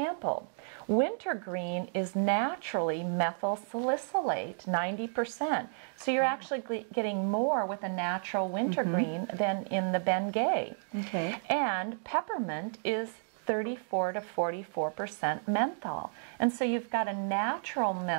wintergreen is naturally methyl salicylate, 90%. So you're actually getting more with a natural wintergreen than in the Bengay. Okay. And peppermint is 34 to 44% menthol. And so you've got a natural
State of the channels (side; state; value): left; silent; digital silence